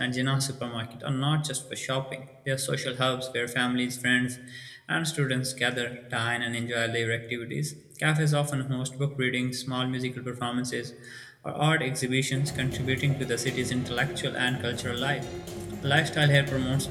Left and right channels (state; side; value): identical; both; correlation 1.00